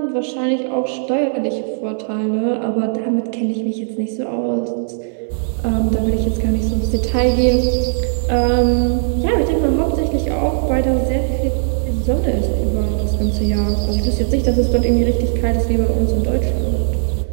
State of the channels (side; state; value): left; silent; 63 dB below the other